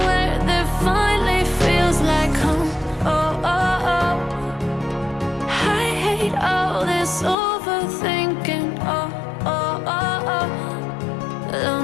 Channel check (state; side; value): drops out; right; at 7.4 s